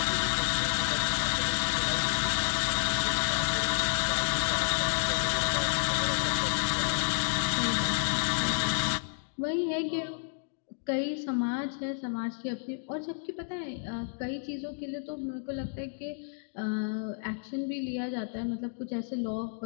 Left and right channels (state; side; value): silent; right; digital silence